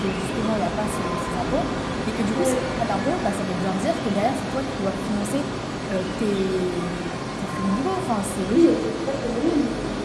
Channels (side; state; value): both; identical; correlation 1.00